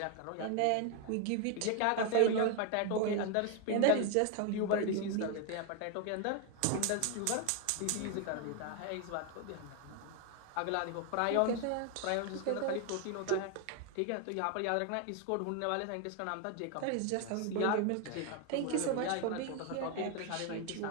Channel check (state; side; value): different; both; correlation 0.01